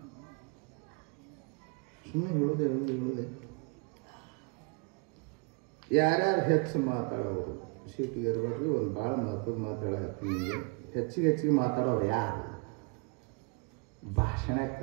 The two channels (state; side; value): quieter; left; 33.7 dB